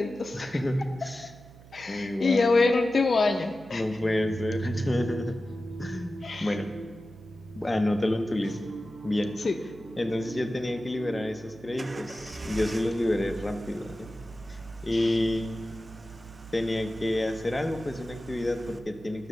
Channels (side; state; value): right; noise; hum, 21 dB below the sound